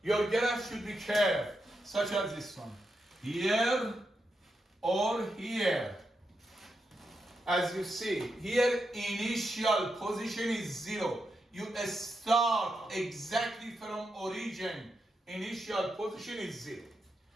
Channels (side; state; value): both; normal; correlation 0.85